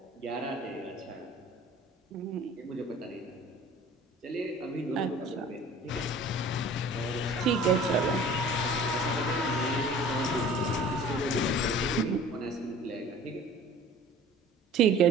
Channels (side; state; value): both; normal; correlation 0.46